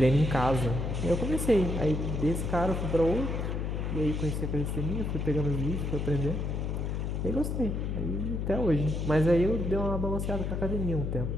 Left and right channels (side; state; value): left; noise; hum, 1 dB below the sound